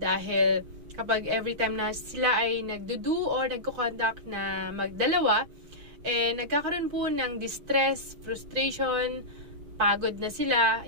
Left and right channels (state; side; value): late; left; 5.9 ms